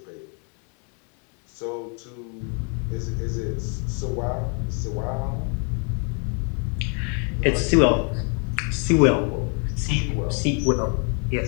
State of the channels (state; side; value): quieter; right; 38.6 dB